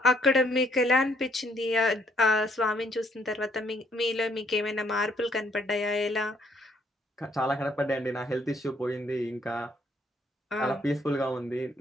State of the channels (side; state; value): both; normal; correlation 0.68